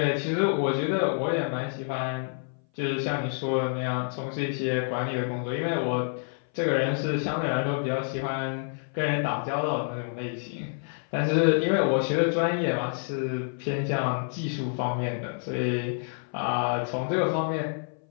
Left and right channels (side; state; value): right; silent; 58 dB below the other